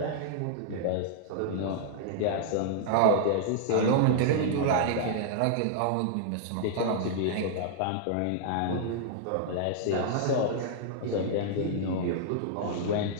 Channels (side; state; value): both; different; correlation -0.01